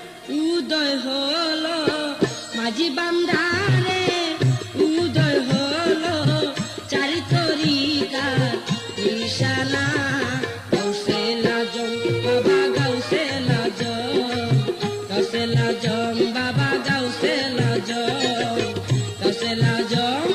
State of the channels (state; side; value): identical; both; correlation 1.00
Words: উদয় হলো, মাঝি বান্দারে উদয় হলো, চারি তরিকার নিশানা। গাউসে লাজম বাবা গাউসে লাজম, গাউসে লাজম বাবা গাউসে লাজম, গাউসে লাজম